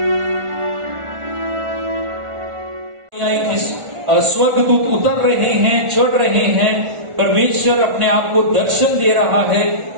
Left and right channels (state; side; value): late; left; 1.4 ms